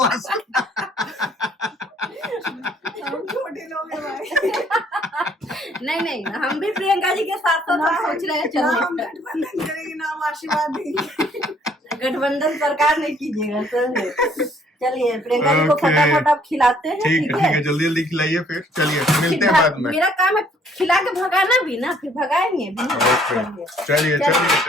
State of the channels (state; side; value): normal; both; correlation 0.62